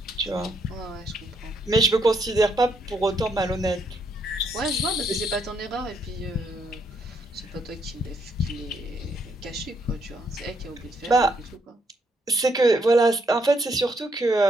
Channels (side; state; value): both; normal; correlation 0.74